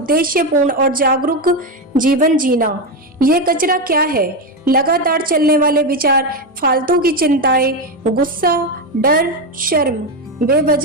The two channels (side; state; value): both; normal; correlation 0.11